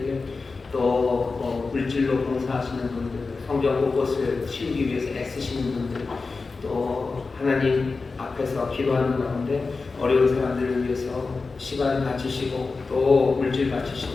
또 물질로 봉사하시는 분들, 성경 곳곳을 치우기 위해서 애쓰시는 분들, 또 하나님 앞에서 기도하는 가운데 어려운 사람들을 위해서 시간 바치시고 또 물질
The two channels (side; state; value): right; quieter; 4.1 dB